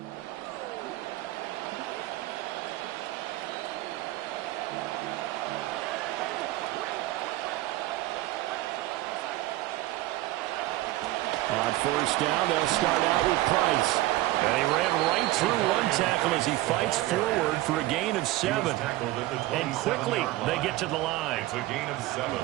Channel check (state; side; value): quieter; left; 17.3 dB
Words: On first down, they'll start out with Price. And he ran right through one tackle as he fights forward for a gain of 7. And quickly, they get to the line. It's a gain of 7.